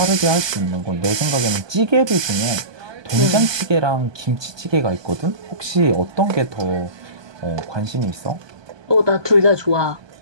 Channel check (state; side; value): late; left; 1.2 ms